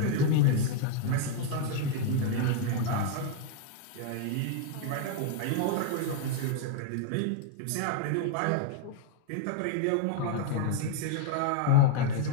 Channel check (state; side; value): different; both; correlation 0.00